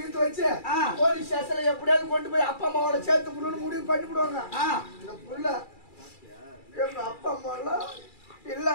வச்சு போலீஸ் ஸ்டேஷன்ல எப்படியாவது கொண்டு போய் அப்பா அம்மாவோட சேர்த்து புள்ளு முடிவு பண்ணி விடுவாங்க. இந்த புள்ள எங்க அப்பா அம்மா எல்லாம்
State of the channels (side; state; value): right; late; 2.3 ms